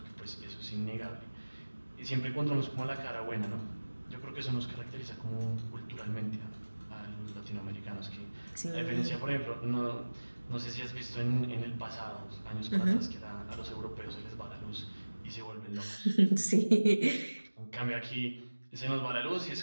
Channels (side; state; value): both; inverted; correlation -1.00